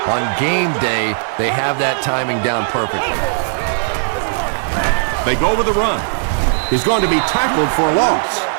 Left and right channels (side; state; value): left; silent; 68 dB below the other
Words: on game day, they have that timing down perfectly. They go with the run. He's going to be tackled for a loss.